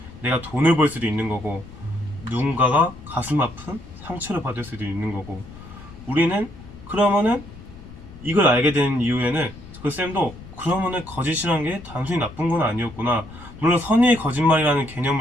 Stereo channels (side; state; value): left; noise; rumble, 17 dB below the sound